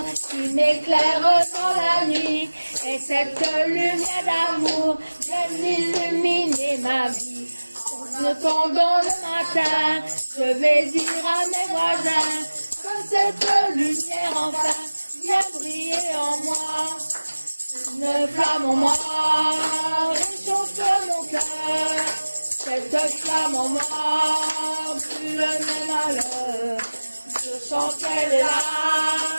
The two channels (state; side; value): inverted; both; correlation -1.00